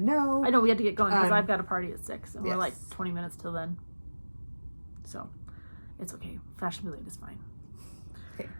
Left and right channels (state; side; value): inverted; both; correlation -1.00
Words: no. I know we had to get going because I've got a party at 6 and yes. we're like 20 minutes till then. So it's okay. Fashionably late is fine. Okay.